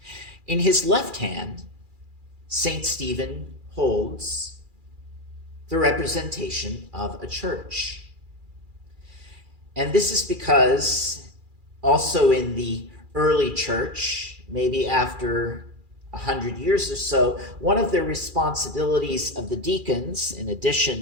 In his left hand, St. Stephen holds the representation of a church. And this is because also in the early church, maybe after 100 years or so, one of the responsibilities of the deacons, in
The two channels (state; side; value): late; left; 2.4 ms